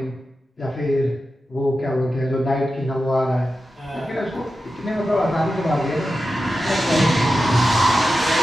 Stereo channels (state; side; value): normal; both; correlation 0.92